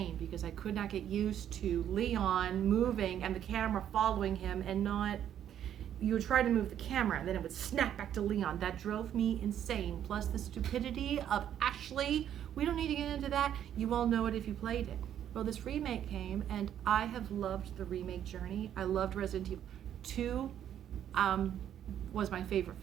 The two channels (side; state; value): left; quieter; 10.2 dB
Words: because I could not get used to Leon moving and the camera following him and not... You would try to move the camera and then it would snap back to Leon. That drove me insane. Plus the stupidity of Ashley. We don't need to get into that. You all know it if you played it. Well, this remake came and I have loved the remake journey. I loved Resident Evil 2. Was my favorite